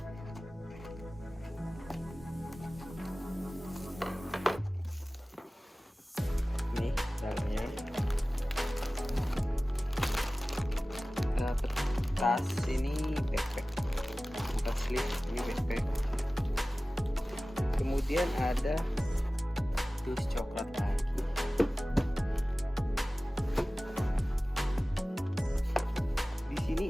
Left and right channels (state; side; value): normal; both; correlation 0.97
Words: Ini dalamnya tas, ini backpack, tas sleeve, ini backpack. Kemudian ada dus coklat lagi. Di sini